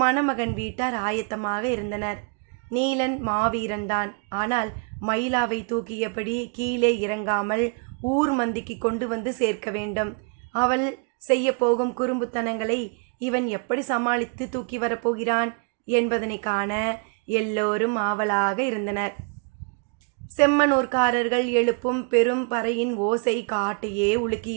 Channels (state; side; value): quieter; left; 38.4 dB